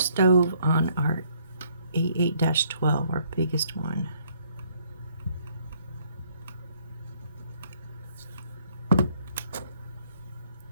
on our A8-12, our biggest one.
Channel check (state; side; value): inverted; both; correlation -0.66